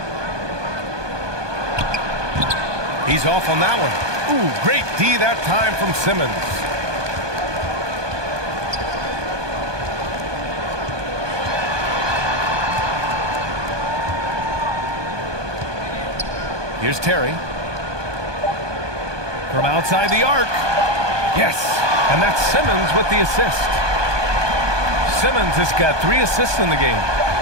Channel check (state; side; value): late; left; 1.2 ms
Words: He's off on that one. Ooh, great D that time from Simmons. Here's Terry. From outside the arc. Yes, and that's Simmons with the assist. Simmons has got 3 assists in the game.